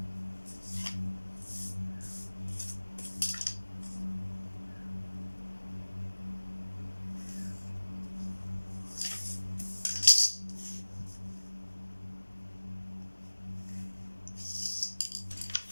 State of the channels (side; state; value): both; inverted; correlation -1.00